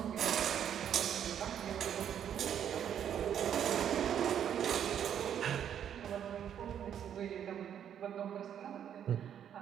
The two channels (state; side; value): quieter; left; 9.3 dB